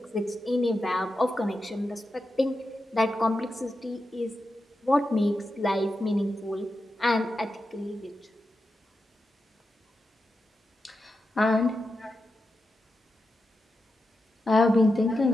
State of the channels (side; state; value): both; normal; correlation 0.89